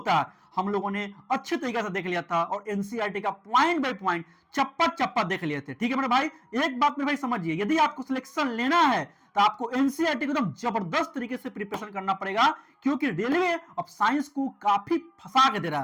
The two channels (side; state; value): both; identical; correlation 1.00